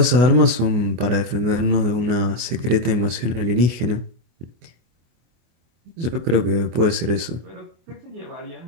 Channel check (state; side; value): late; left; 24 ms